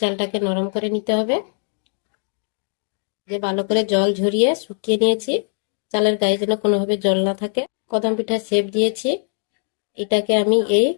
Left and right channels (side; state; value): right; silent; 65 dB below the other